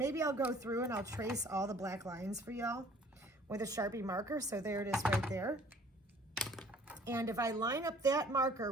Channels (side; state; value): both; normal; correlation 0.54